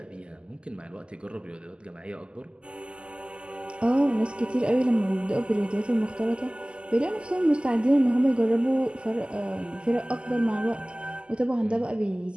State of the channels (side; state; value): left; late; 0.050 ms